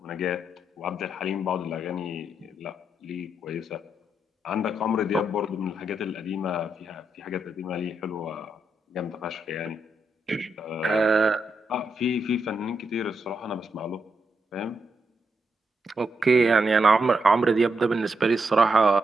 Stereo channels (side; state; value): both; normal; correlation 0.82